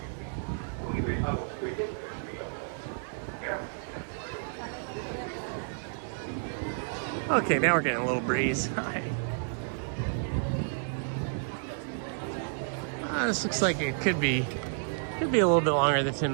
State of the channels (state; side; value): silent; left; digital silence